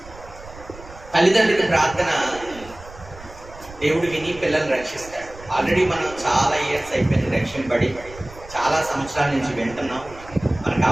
తల్లిదండ్రుల ప్రార్థన దేవుడు విని పిల్లల్ని రక్షిస్తాడు. ఆల్రెడీ మనం చాలా ఇయర్స్ అయిపోయింది రక్షింపబడి, చాలా సంవత్సరాల నుంచి వింటున్నాం, మనకు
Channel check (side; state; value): right; noise; rumble, 18 dB below the sound